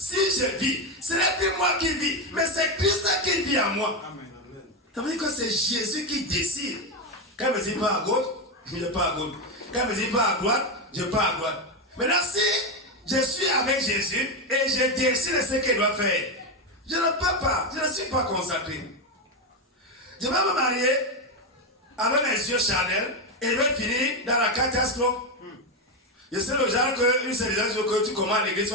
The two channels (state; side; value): normal; both; correlation 0.10